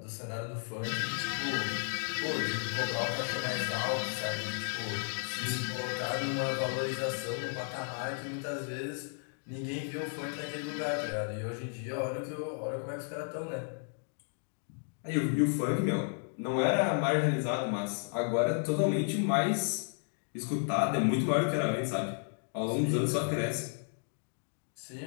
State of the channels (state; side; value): silent; right; 55 dB below the other